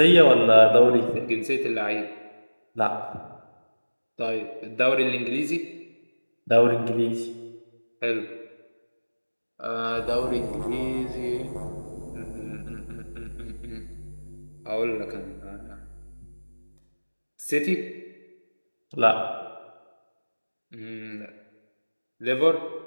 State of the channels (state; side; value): inverted; both; correlation -1.00